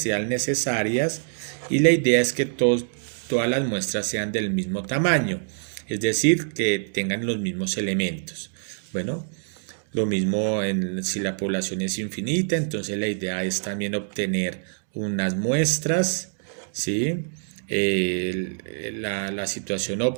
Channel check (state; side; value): silent; left; digital silence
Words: necesarias, y la idea es que todas las muestras sean del mismo tamaño, es decir, que tengan los mismos elementos. Bueno, lo mismo si la población es infinita, entonces la idea es también obtener unas muestras, ¿sí? La situación